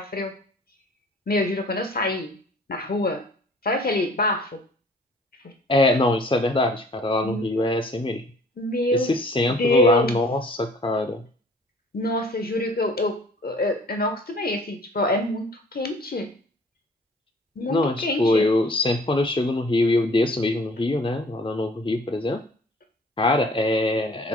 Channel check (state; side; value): normal; both; correlation 0.52